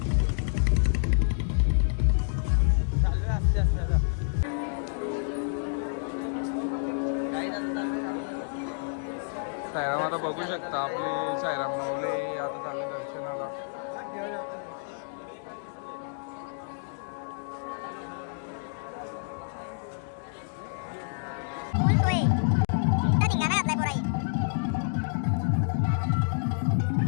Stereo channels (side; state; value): right; silent; digital silence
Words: चाललोय आस्ते आस्ते. आता साईराम आता बघू शकता आपले साईराम माऊली आता चालले दर्शनाला.